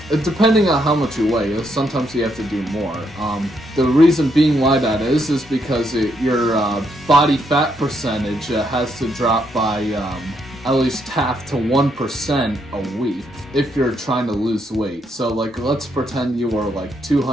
depending on how much you weigh. Sometimes you have to do more. The reason being why that is because your body fat percentage has to drop by at least half to 1% a week if you're trying to lose weight. So like, let's pretend you were like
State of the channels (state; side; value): normal; both; correlation 0.76